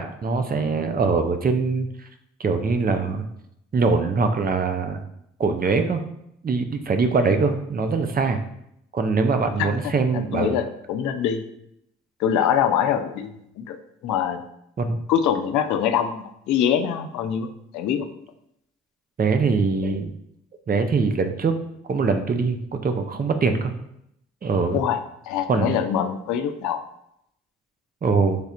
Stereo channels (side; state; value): both; normal; correlation 0.44